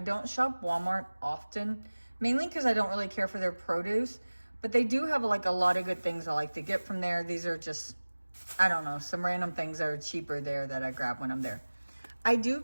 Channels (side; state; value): both; inverted; correlation -1.00